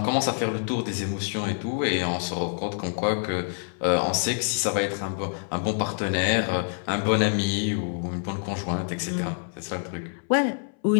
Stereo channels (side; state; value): right; silent; 60 dB below the other